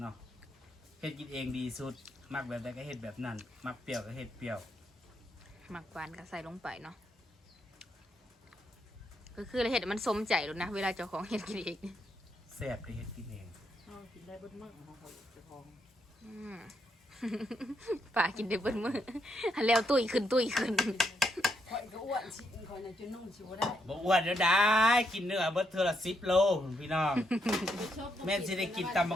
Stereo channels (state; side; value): normal; both; correlation 0.78